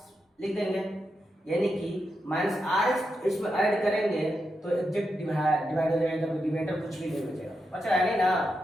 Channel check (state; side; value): normal; both; correlation 0.86